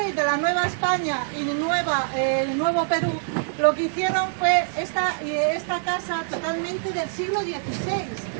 de la Nueva España y Nuevo Perú, lo que hicieron fue esta casa totalmente del siglo XVI.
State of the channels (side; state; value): left; silent; digital silence